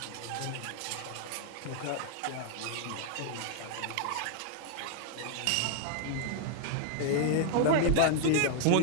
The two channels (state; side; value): different; both; correlation 0.00